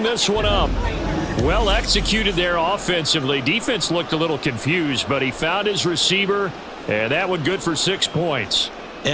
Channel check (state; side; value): identical; both; correlation 1.00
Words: this one up. Well executed there offensively. Defense looked a little confused, but he found his receiver, and that one good for 6 points.